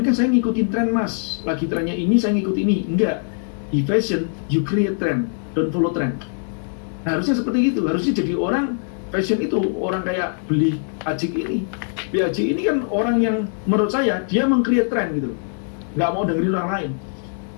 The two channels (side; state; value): right; silent; digital silence